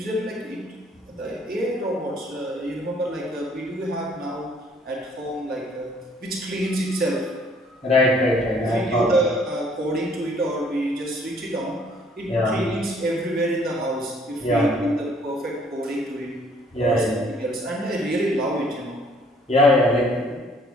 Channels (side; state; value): both; normal; correlation 0.61